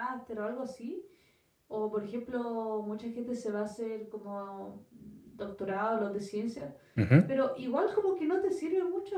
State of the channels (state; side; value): identical; both; correlation 1.00